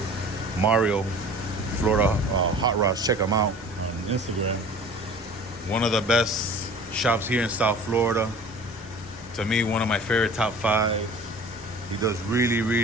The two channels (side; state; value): both; normal; correlation 0.43